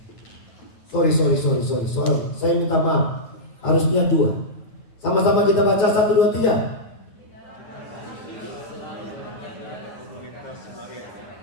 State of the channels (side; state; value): right; late; 9.5 ms